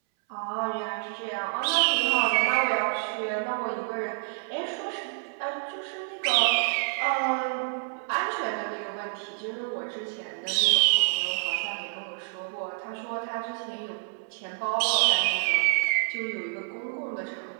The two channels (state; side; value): silent; left; 59 dB below the other